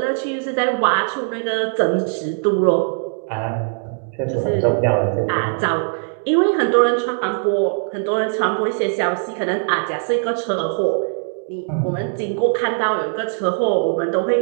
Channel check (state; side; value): silent; left; digital silence